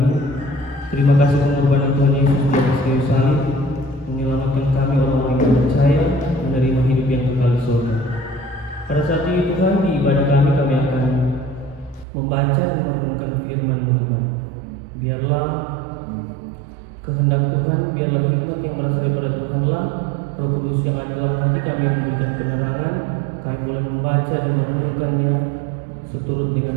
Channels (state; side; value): drops out; left; at 12.1 s